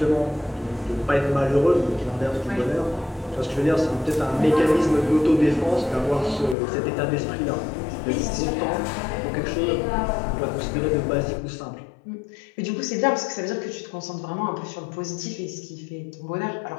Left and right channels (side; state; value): right; drops out; at 6.6 s